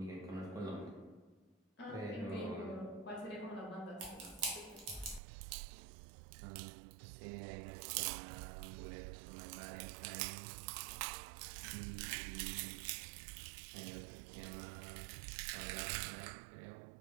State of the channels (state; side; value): drops out; left; at 5.2 s